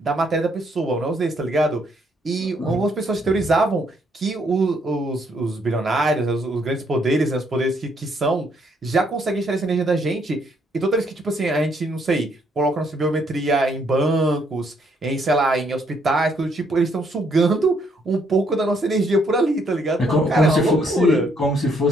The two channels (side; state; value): both; normal; correlation 0.71